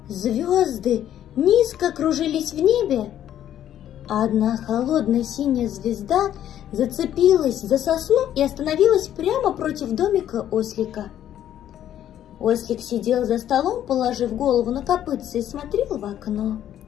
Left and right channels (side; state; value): right; quieter; 11.1 dB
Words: звезды низко кружились в небе, а одна холодная синяя звезда зацепилась за сосну и остановилась прямо против домика ослика. Ослик сидел за столом, положив голову на копытце, и смотрел в окно.